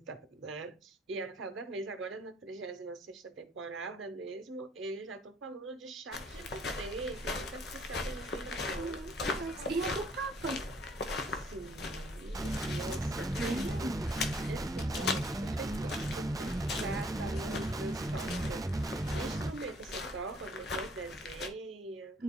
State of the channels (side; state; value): both; normal; correlation 0.61